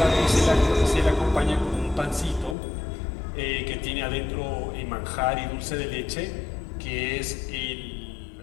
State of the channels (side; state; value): right; drops out; at 2.6 s